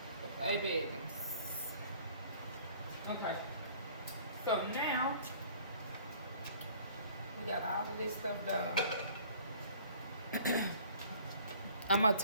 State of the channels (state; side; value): inverted; both; correlation -0.53